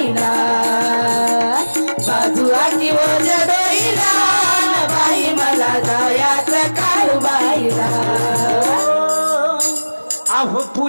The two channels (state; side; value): inverted; both; correlation -1.00